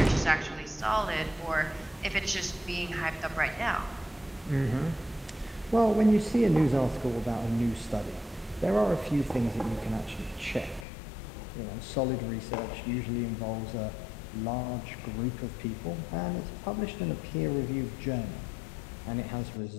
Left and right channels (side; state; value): right; drops out; at 10.9 s